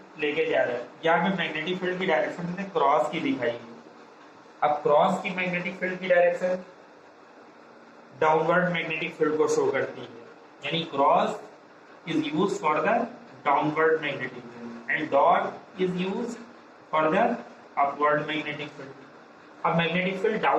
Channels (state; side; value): identical; both; correlation 1.00